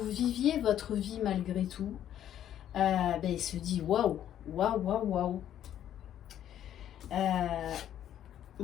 viviez votre vie malgré tout, il se dit waouh, waouh, waouh, waouh.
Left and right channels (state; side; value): quieter; right; 10.9 dB